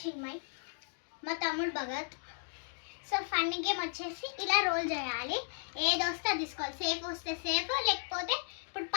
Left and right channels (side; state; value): right; silent; digital silence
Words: చిన్మయ్, మా తమ్ముడు భగత్. సో ఫన్నీ గేమ్ వచ్చేసి ఇలా రోల్ చేయాలి. ఏది వస్తే అది తీసుకోవాలి. సేఫ్ వస్తే సేఫ్, లేకపోతే ఇప్పుడు